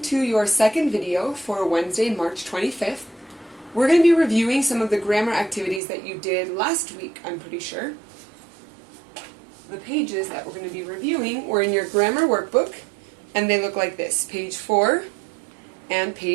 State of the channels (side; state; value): left; drops out; at 5.8 s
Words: to your second video for Wednesday, March 25th. We're going to be reviewing some of the grammar activities that you did last week, I'm pretty sure. The pages that we're going to be reviewing were in your grammar workbook, and they look like this, page 4 and